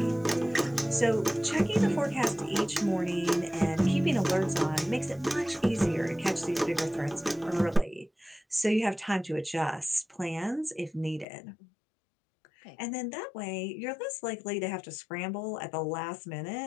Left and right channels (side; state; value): right; drops out; at 11.2 s